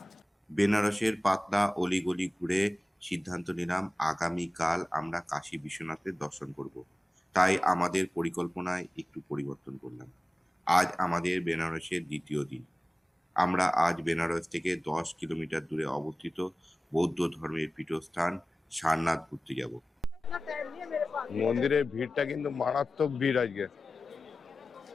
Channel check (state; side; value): normal; both; correlation 0.96